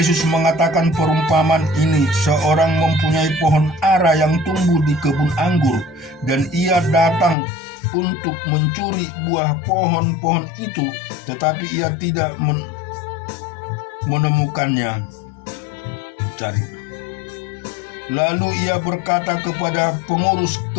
mengatakan perumpamaan ini, seorang mempunyai pohon ara yang tumbuh di kebun anggur, dan ia datang untuk mencuri buah pohon-pohon itu, tetapi ia tidak menemukannya. Lalu ia berkata kepada pengurus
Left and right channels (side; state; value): right; drops out; at 7.4 s